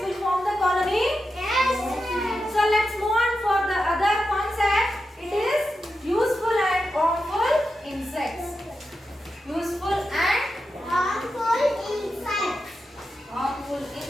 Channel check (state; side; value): normal; both; correlation 0.89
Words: will form the colony? Yes, ma'am. So let's move on for the other concept. It is useful and harmful insects. Useful and Harmful insects. harmful